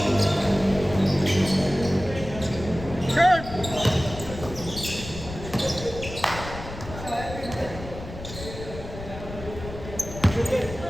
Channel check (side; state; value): left; noise; rumble, 11 dB below the sound